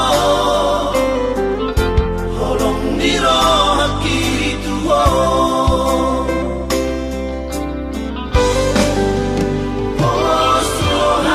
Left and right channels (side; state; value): both; identical; correlation 1.00